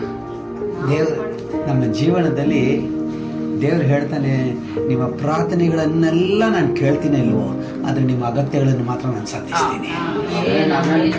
ದೇವರು ನಮ್ಮ ಜೀವನದಲ್ಲಿ ದೇವರು ಹೇಳ್ತಾನೆ, ನಿಮ್ಮ ಪ್ರಾರ್ಥನೆಗಳನ್ನೆಲ್ಲ ನಾನು ಕೇಳ್ತೀನಿ ಇಲ್ವೋ, ಆದರೆ ನಿಮ್ಮ ಅಗತ್ಯಗಳನ್ನು ಮಾತ್ರ ನಾನು ಸಂಧಿಸ್ತೀನಿ.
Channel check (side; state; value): both; identical; correlation 1.00